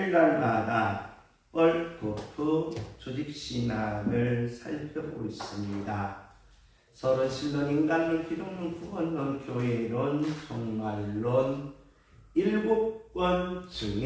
월코프 조직신학을 살펴보고 있습니다. 서로 신론, 인간론, 기독론, 구원론, 교회론, 종말론 7권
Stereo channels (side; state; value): both; identical; correlation 1.00